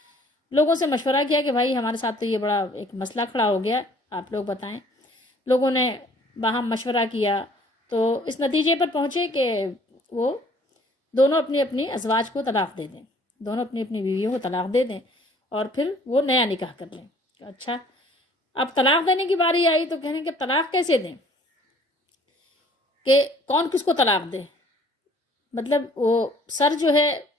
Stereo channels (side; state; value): both; normal; correlation 0.56